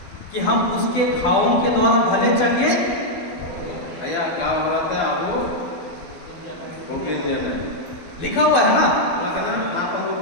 कि हम उसके घावों के द्वारा भले चंगे लिखा हुआ है ना।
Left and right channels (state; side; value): late; right; 12 ms